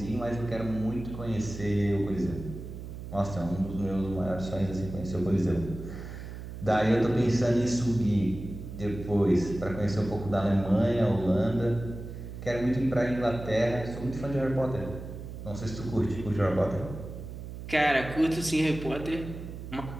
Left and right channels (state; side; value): noise; right; hum, 10 dB below the sound